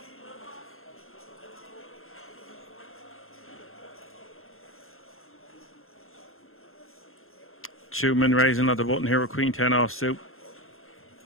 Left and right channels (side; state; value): right; late; 0.61 ms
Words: Schumann raising another button here with Queen 10 offsuit.